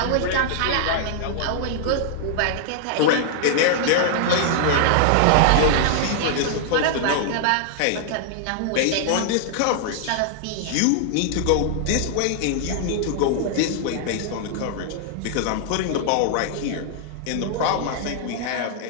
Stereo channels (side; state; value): both; different; correlation -0.01